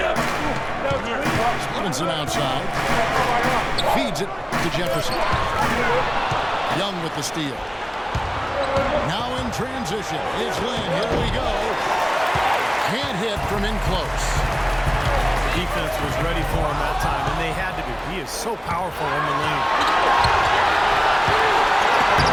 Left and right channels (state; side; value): identical; both; correlation 1.00